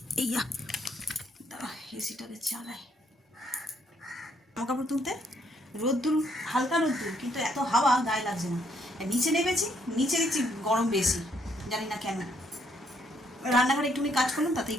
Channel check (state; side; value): normal; both; correlation 0.71